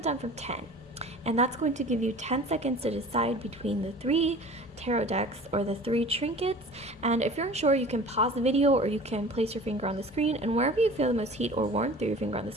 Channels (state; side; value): normal; both; correlation 0.42